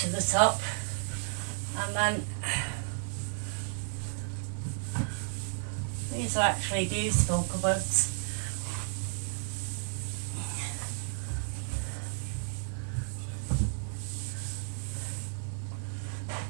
to the top, and then these are actually beautiful cupboards.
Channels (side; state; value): left; silent; 56 dB below the other